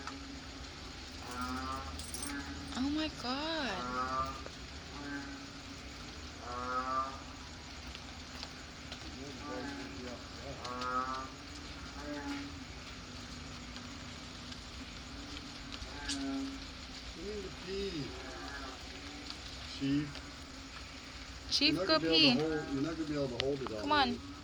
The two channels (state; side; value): identical; both; correlation 1.00